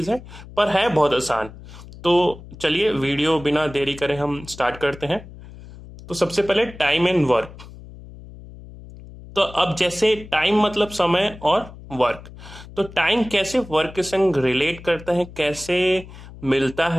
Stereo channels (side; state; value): left; noise; hum, 17 dB below the sound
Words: है पर है बहुत आसान। तो चलिए वीडियो बिना देरी करे हम स्टार्ट करते हैं। तो सबसे पहले टाइम एंड वर्क। तो अब जैसे टाइम मतलब समय और वर्क, तो टाइम कैसे वर्क के संग रिलेट करता है, कैसे मिलता